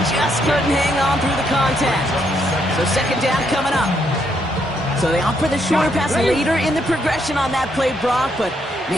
Just couldn't hang on through the contact. So second down coming up. So they opt for the shorter pass later in the progression on that play, Brock, but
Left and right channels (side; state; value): both; normal; correlation 0.75